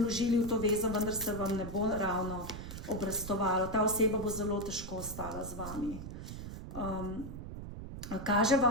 v to vezo, vendar se vam ne bo ravno obrastovalo. Ta oseba bo zelo težko ostala z vami. Kaže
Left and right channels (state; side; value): noise; right; rumble, 9 dB below the sound